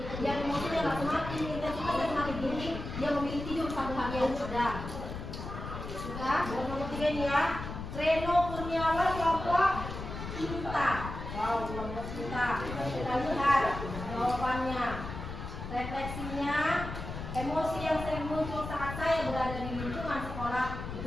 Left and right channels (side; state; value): left; noise; rumble, 8 dB below the sound